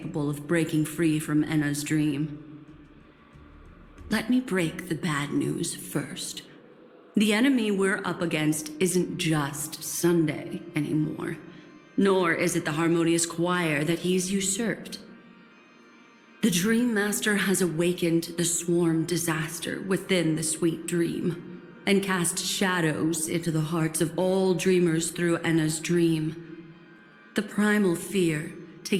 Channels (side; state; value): both; identical; correlation 1.00